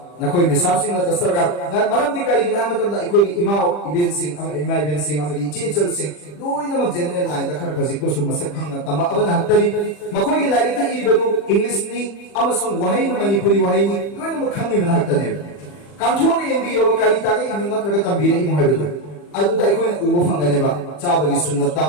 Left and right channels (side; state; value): right; late; 40 ms